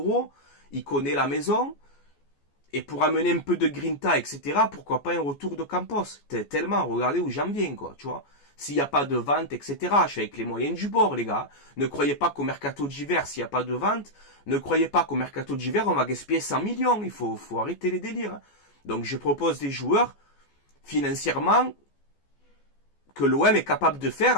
il connaît la maison, et pour amener un peu de Grinta, etc., pourquoi pas un retour de Campos. Tellement, regardez où j'en viens, quoi, tu vois. S'il n'y a pas de vente, etc., je suis avec les moyens du bord, les gars. Ne croyez pas qu'au mercato d'hiver, s'il n'y a pas de vente, ne croyez pas qu'au mercato d'hiver, on va gaspiller 100 millions. Il faut arrêter les délires. Donc, je propose des joueurs, financièrement, que l'OM est capable de faire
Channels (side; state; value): right; late; 14 ms